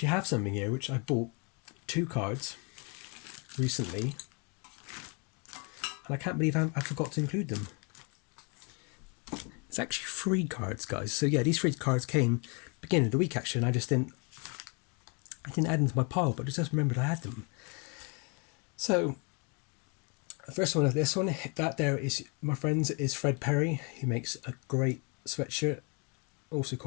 have something here which I bought 2 cards recently, and I can't believe I forgot to include them. It's actually 3 cards, guys. So yeah, these 3 cards came beginning of the week actually, and I didn't add them to my pile, but I just remembered I had them. So the first one of this one, that there is, my friends, is Fred Perry. He makes a great sweatshirt, also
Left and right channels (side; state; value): right; quieter; 34.1 dB